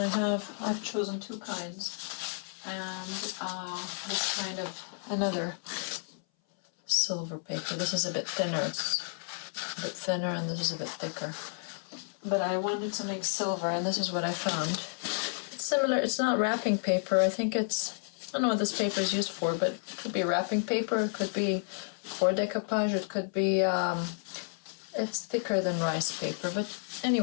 chosen two kinds. And this kind of another silver paper. This is a bit thinner, it's a bit thinner, and this is a bit thicker. But I wanted something silver, and this is what I found. It's similar, it's not wrapping paper. I don't know what this paper is used for, but it could be wrapping paper, it could be for decoupage, it could be, it's thicker than rice paper. But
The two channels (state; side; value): silent; right; 57 dB below the other